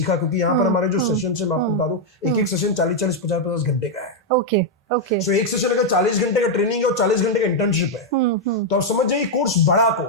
क्योंकि यहाँ पर हमारे जो सेशन है, मैं आपको बता दूं, एक सेशन 40-40, 50-50 घंटे का है। ओके। सो एक सेशन अगर 40 घंटे का ट्रेनिंग है और 40 घंटे का इंटर्नशिप है, तो आप समझ जाइए कोर्स बड़ा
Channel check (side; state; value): both; normal; correlation -0.01